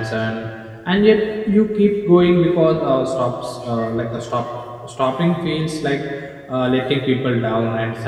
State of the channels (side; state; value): both; identical; correlation 1.00